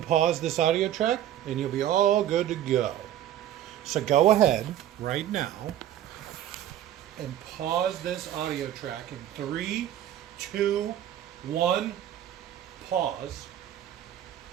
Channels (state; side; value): quieter; left; 11.8 dB